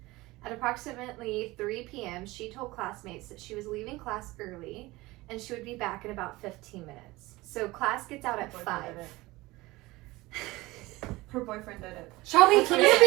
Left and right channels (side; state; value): left; quieter; 20.5 dB